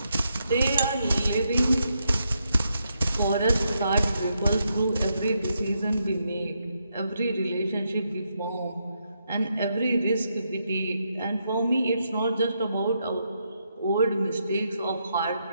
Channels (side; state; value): both; inverted; correlation -0.80